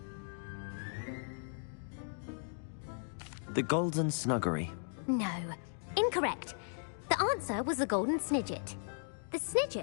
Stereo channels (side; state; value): right; silent; digital silence